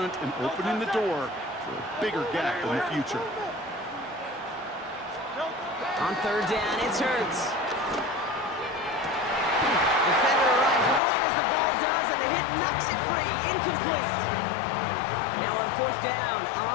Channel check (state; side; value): drops out; right; at 11.0 s